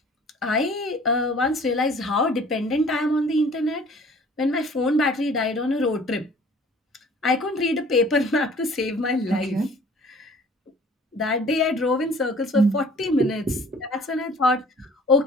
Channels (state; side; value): normal; both; correlation 0.51